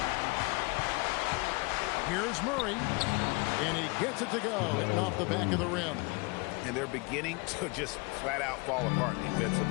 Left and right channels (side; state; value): right; quieter; 27.9 dB